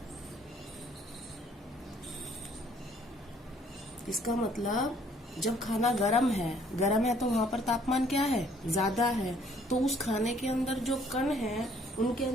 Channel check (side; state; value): both; normal; correlation 0.61